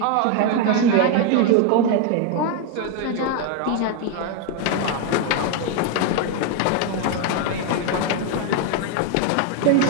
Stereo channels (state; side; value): different; both; correlation 0.01